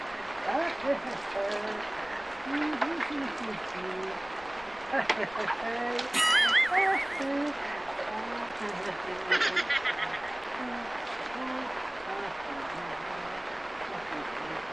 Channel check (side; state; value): left; noise; rumble, 22 dB below the sound